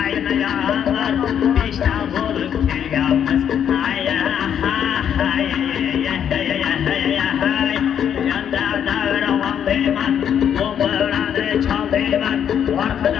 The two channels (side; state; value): right; quieter; 8.9 dB